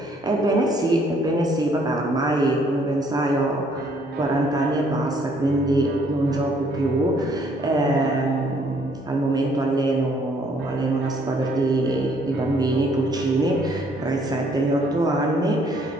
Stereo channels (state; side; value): normal; both; correlation 0.65